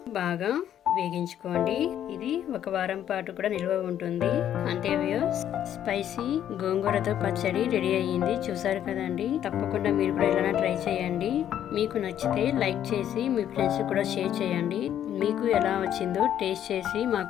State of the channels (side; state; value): right; quieter; 10.5 dB